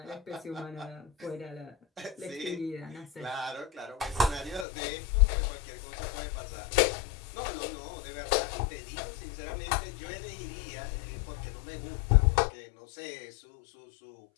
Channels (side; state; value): right; drops out; at 4.7 s